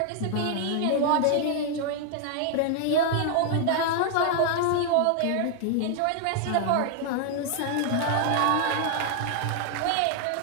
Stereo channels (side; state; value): both; different; correlation 0.00